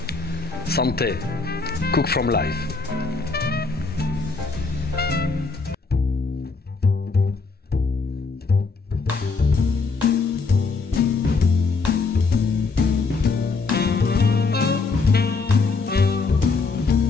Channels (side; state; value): right; quieter; 4.2 dB